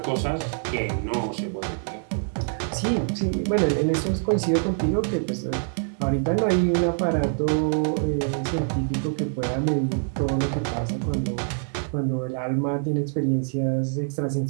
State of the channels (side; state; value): left; silent; digital silence